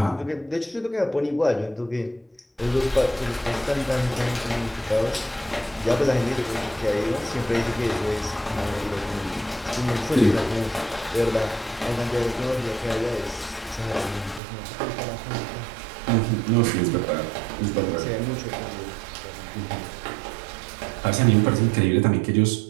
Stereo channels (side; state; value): left; drops out; at 14.4 s